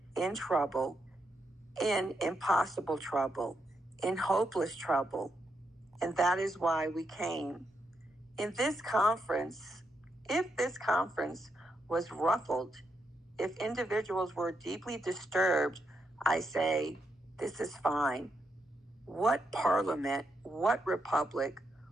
in trouble, in impossible trouble, in hopeless trouble, and that is why we came. In this conference, if this conference was ruffled, if individuals were deeply disturbed, I say, this is fine. What parliament, what republic,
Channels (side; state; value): both; normal; correlation 0.81